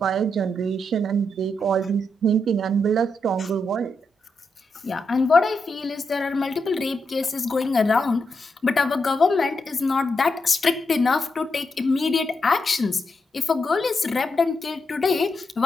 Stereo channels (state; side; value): normal; both; correlation 0.83